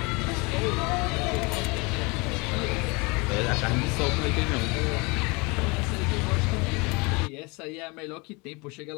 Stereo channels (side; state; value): right; quieter; 27.5 dB